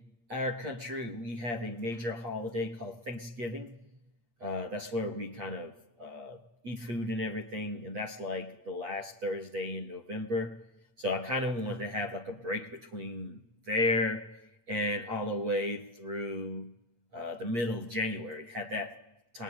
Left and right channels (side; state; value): left; late; 8.5 ms